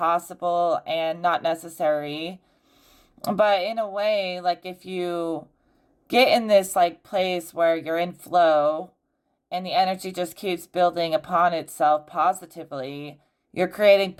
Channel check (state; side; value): identical; both; correlation 1.00